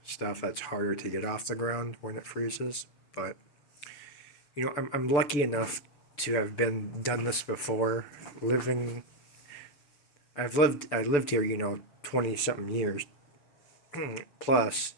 stuff, that's harder to get off the ground when it freezes. But you know, I'm lucky enough to have done this before. I lived here, you know, 20 something years plus,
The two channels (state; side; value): late; right; 7.0 ms